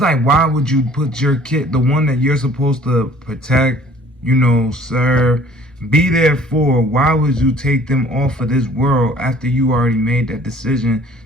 why would you put your kid, the one that you're supposed to protect, serve, be there for, why would you take them off of this world after you already made that decision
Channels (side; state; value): both; normal; correlation 0.54